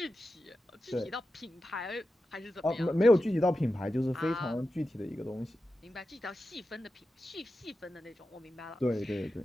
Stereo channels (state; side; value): normal; both; correlation 0.91